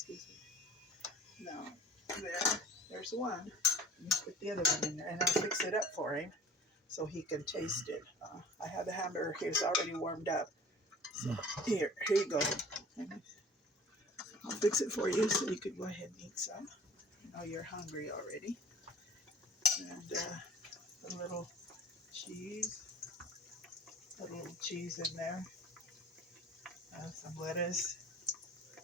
me. Now, there's one. Let me put the other one in there, and I'll fix it up for him so he can taste it. I have the hamburger here. It's already warmed up. So here you go. I'll fix it for you so you can go ahead and eat some. I know you're hungry already. And a little cheese, in there. Some lettuce.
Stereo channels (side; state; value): both; normal; correlation 0.45